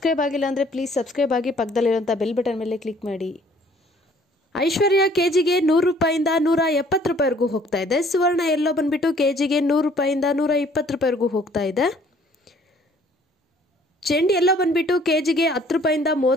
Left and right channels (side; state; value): both; normal; correlation 0.58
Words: ಆಗಿಲ್ಲ ಅಂದರೆ ಪ್ಲೀಸ್ ಸಬ್ಸ್ಕ್ರೈಬ್ ಆಗಿ ಪಕ್ಕದಲ್ಲಿರುವಂಥ ಬೆಲ್ ಬಟನ್ ಮೇಲೆ ಕ್ಲಿಕ್ ಮಾಡಿ. ಐಶ್ವರ್ಯ ಕೆಜಿಗೆ 100 ರೂಪಾಯಿಂದ 170 ರೂಪಾಯಿವರೆಗೂ ಹೋಗ್ತಾ ಇದೆ. ಸುವರ್ಣ ಎಲ್ಲೋ ಬಂದುಬಿಟ್ಟು ಕೆಜಿಗೆ 100 ರೂಪಾಯಿಂದ 120 ರೂಪಾಯಿವರೆಗೂ ಹೋಗ್ತಾ ಇದೆ. ಚೆಂಡು ಎಲ್ಲೋ ಬಂದುಬಿಟ್ಟು ಕೆಜಿಗೆ 10 ರೂಪಾಯಿಂದ